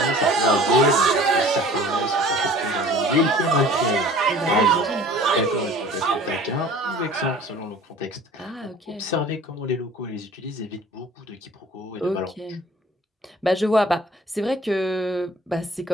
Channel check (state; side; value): normal; both; correlation 0.47